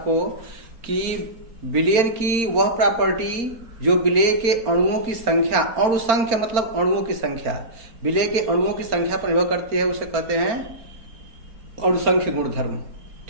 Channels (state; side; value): late; left; 4.4 ms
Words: कि विलयन की वह प्रॉपर्टी जो विलय के अणुओं की संख्या, अणुसंख्य मतलब अणुओं की संख्या, विलय के अणुओं की संख्या पर निर्भर करती है, उसे कहते हैं अणुसंख्य गुणधर्म।